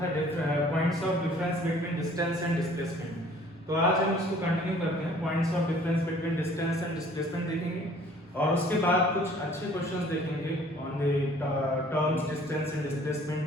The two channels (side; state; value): both; normal; correlation 0.54